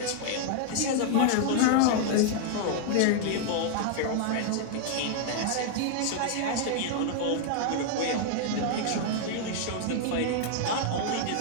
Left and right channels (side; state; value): both; different; correlation 0.00